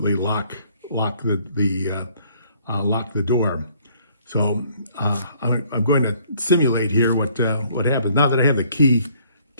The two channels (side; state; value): both; inverted; correlation -0.62